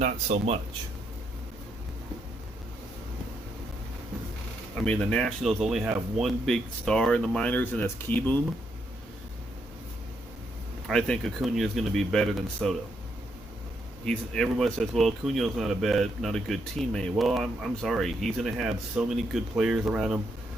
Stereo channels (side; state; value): both; normal; correlation 0.77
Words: so much. I mean, the Nationals only have one big star in the minors, and that's Keyboom. I think Acuna is going to be better than Soto. Everyone says, well, Acuna's not a good teammate. Well, I'm sorry. He's going to have so many good players around him.